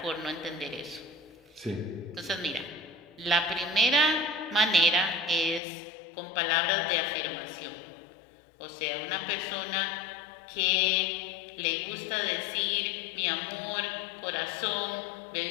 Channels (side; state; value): right; drops out; at 5.6 s